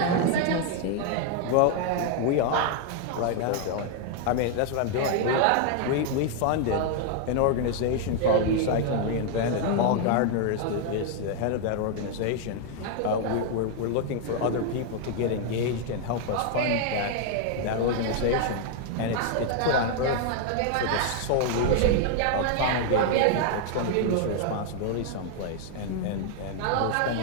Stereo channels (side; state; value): both; different; correlation 0.00